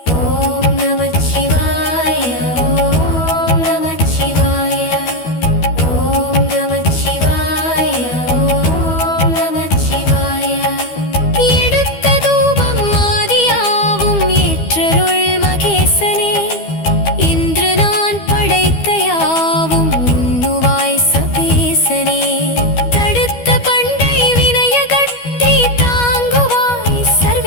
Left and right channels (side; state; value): right; late; 12 ms